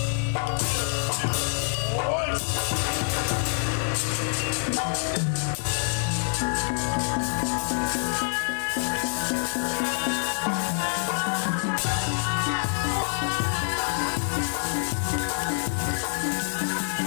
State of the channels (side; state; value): right; silent; 61 dB below the other